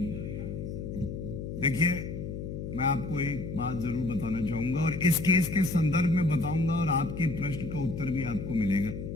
देखिए, मैं आपको एक बात जरूर बताना चाहूंगा और इस केस के संदर्भ में बताऊंगा और आपके प्रश्न का उत्तर भी आपको मिलेगा।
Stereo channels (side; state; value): left; noise; hum, 6 dB below the sound